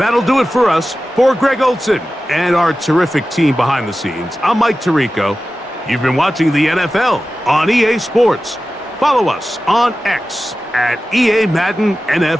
do it for us. For Greg Olson and our terrific team behind the scenes, I'm Mike Tirico. You've been watching the NFL on EA Sports. Follow us on X at EA Madden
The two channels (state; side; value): normal; both; correlation 0.94